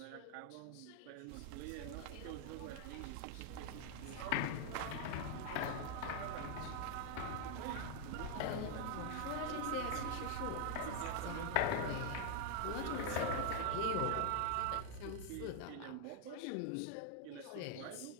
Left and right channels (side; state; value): both; different; correlation 0.00